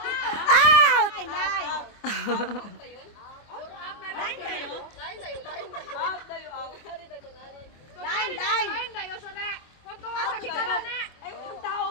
Out! Nine. Line tayo? Out tayo, out. Line. Lain dayo sore. Kunto nga sa kikaroon na. Ay, yung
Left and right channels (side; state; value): right; late; 24 ms